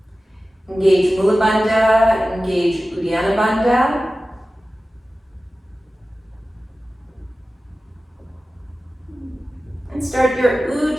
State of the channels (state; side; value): normal; both; correlation 0.95